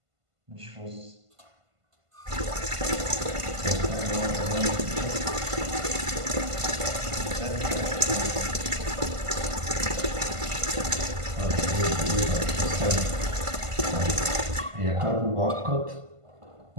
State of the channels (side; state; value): left; late; 1.5 ms